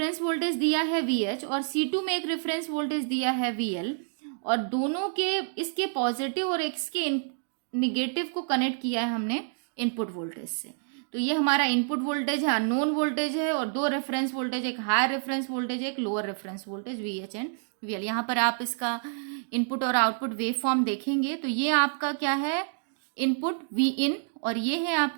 वोल्टेज दिया है VH और C2 में एक रेफरेंस वोल्टेज दिया है VL और दोनों के इसके पॉजिटिव और इसके निगेटिव को कनेक्ट किया है हमने इनपुट वोल्टेज से। तो ये हमारा इनपुट वोल्टेज है, अननोन वोल्टेज है और दो रेफरेंस वोल्टेज, एक हायर रेफरेंस वोल्टेज है, एक lower reference voltage VH and VL। यहाँ पर आप इसका इनपुट और आउटपुट वेव फॉर्म देखेंगे तो ये आपका क्या है, इनपुट Vin और ये है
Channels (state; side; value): silent; left; digital silence